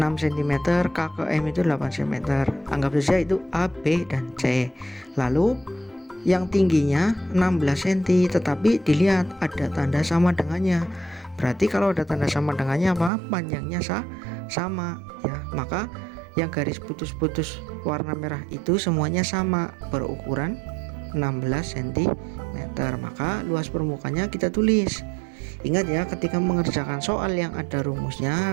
K ke M itu 8 cm. Anggap saja itu A, B, dan C. Lalu yang tingginya 16 cm, tetapi dilihat ada tanda sama dengannya. Berarti kalau ada tanda sama dengannya apa? Panjangnya sama ya. Maka yang garis putus-putus warna merah itu semuanya sama, berukuran 16 cm. Maka luas permukaannya kita tulis. Ingat ya, ketika mengerjakan soal yang ada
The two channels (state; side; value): drops out; left; at 13.1 s